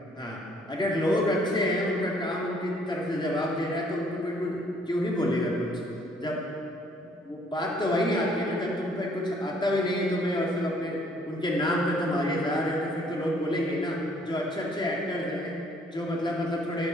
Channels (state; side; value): normal; both; correlation 0.62